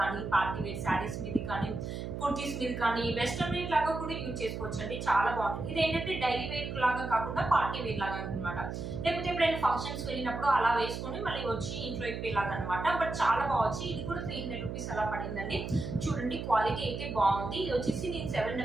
కానీ, పార్టీ వేర్ శారీస్ మీద కానీ, కుర్తీస్ మీద కానీ, వెస్ట్రన్ వేర్ లాగా కూడా యూజ్ చేసుకోవచ్చు అండి. చాలా బాగుంటుంది. ఇది ఏంటంటే డైలీ వేర్ లాగా కాకుండా పార్టీ వేర్ లాగా అనమాట. లేకపోతే ఎప్పుడైనా ఫంక్షన్స్ వెళ్ళినప్పుడు అలా వేసుకొని మళ్ళీ వచ్చి ఇంట్లో ఇప్పేలాగా అనమాట. బట్ చాలా బాగుంది. ఇది కూడా 300 రూపీస్ అలా పడిందండి. చూడండి, క్వాలిటీ అయితే బాగుంది. ఇది వచ్చేసి నేను 7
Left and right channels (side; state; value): right; noise; hum, 6 dB below the sound